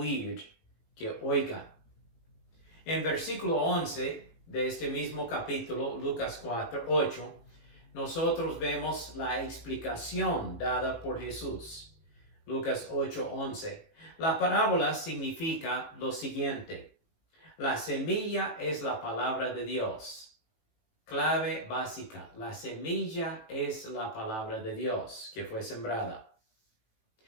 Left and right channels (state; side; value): late; right; 18 ms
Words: que oiga. En versículo 11 de este mismo capítulo, Lucas 8, nosotros vemos la explicación dada por Jesús. Lucas 8:11. La parábola significa lo siguiente: la semilla es la palabra de Dios. Clave básica: la semilla es la palabra de Dios que fue sembrada.